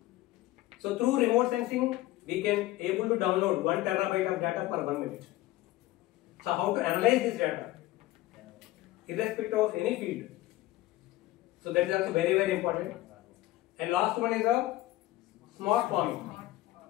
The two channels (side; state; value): right; quieter; 16.7 dB